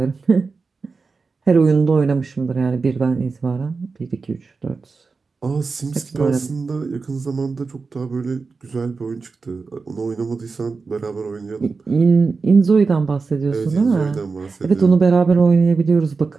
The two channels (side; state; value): left; quieter; 4.5 dB